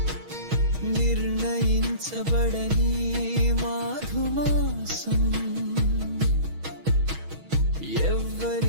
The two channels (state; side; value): late; left; 6.3 ms